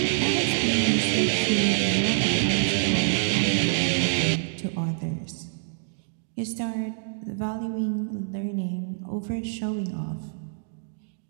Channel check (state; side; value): silent; left; digital silence